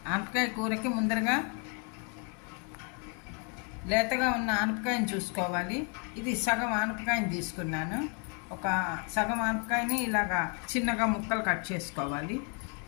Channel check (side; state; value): right; quieter; 37.8 dB